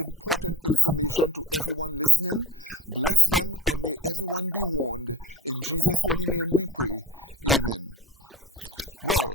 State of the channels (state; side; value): normal; both; correlation 0.40